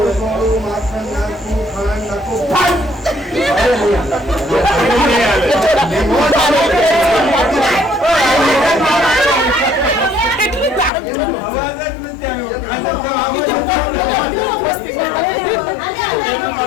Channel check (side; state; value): right; drops out; at 10.9 s